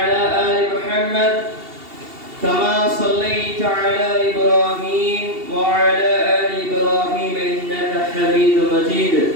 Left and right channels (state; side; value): late; left; 2.7 ms